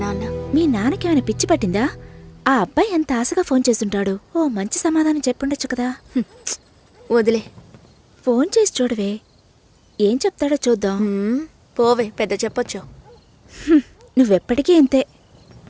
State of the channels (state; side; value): identical; both; correlation 1.00